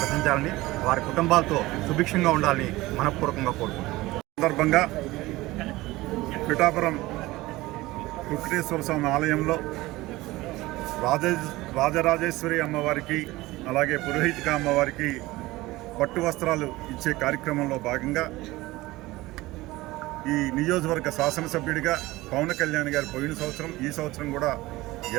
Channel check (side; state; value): left; quieter; 19.1 dB